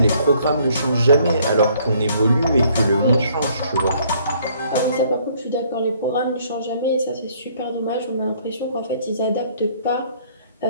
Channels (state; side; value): inverted; both; correlation -0.62